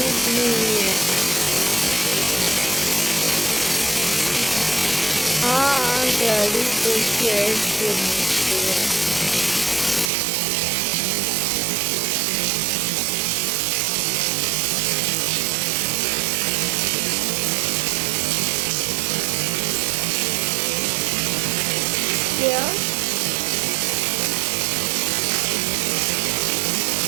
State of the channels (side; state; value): left; drops out; at 10.1 s